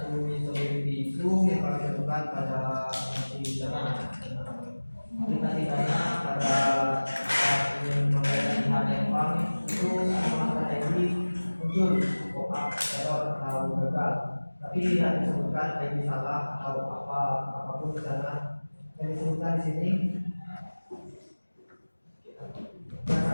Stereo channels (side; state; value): both; inverted; correlation -1.00